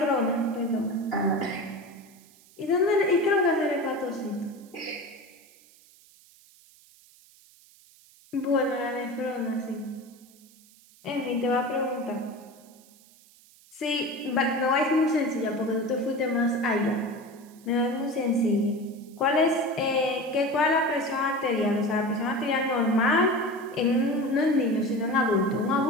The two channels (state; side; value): noise; right; hiss, 27 dB below the sound